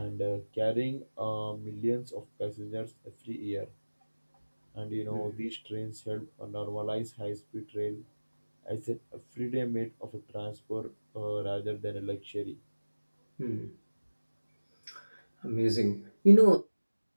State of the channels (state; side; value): inverted; both; correlation -1.00